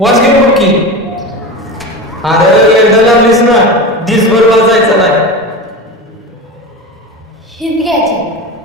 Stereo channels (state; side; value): normal; both; correlation 0.26